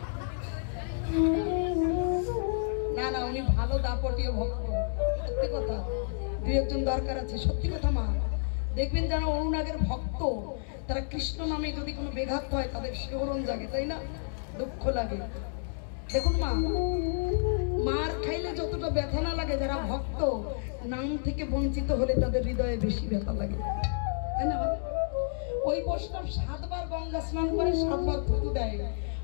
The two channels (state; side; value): silent; right; digital silence